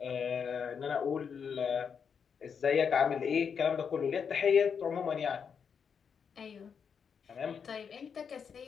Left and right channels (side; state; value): right; quieter; 6.7 dB